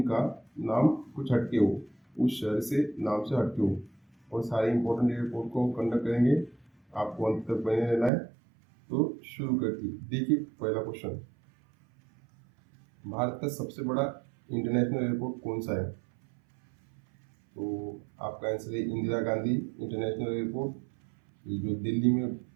नाम कुछ हटके हो, उस शहर से नाम से हटके हो, और सारे इंपॉर्टेंट एयरपोर्ट को कंडक्ट करेंगे। आपको अंत तक बने रहना है। तो शुरू करती देखिए, पहला क्वेश्चन, भारत का सबसे बड़ा इंटरनेशनल एयरपोर्ट कौन सा है? तो आपका आंसर है इंदिरा गांधी इंटरनेशनल एयरपोर्ट। ये जो दिल्ली में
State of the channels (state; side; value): drops out; left; at 8.1 s